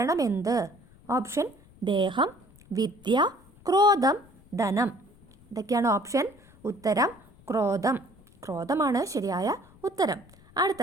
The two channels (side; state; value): left; noise; rumble, 26 dB below the sound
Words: എന്ത്? ഓപ്ഷൻ ദേഹം, വിദ്യ, ക്രോധം, ധനം. ഇതൊക്കെയാണ് ഓപ്ഷൻ. ഉത്തരം ക്രോധമാണ് ശരിയായ ഉത്തരം.